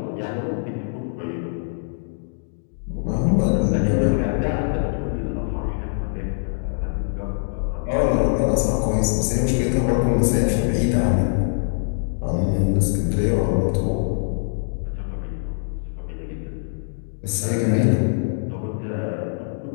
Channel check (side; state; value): right; silent; digital silence